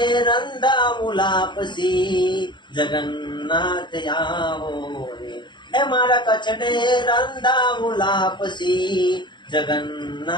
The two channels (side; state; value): right; late; 0.22 ms